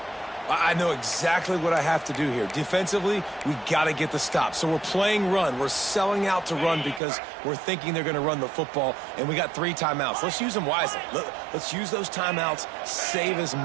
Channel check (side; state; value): left; drops out; at 7.0 s